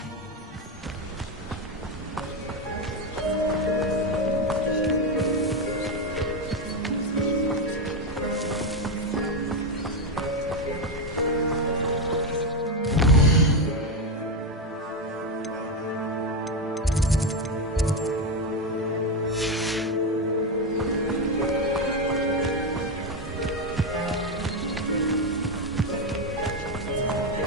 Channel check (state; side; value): normal; both; correlation 0.09